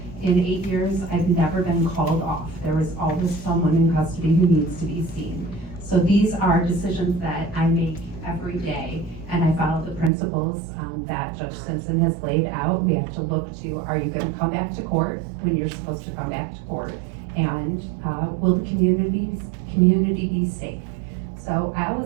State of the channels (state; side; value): drops out; left; at 10.1 s